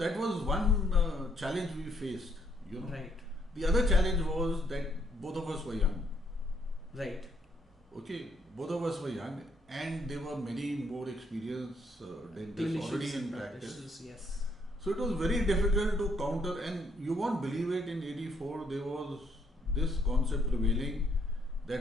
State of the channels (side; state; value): both; normal; correlation 0.71